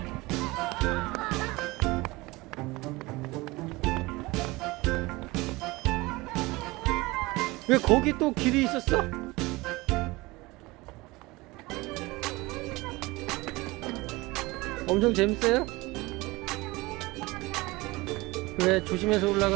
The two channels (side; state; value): left; quieter; 22.0 dB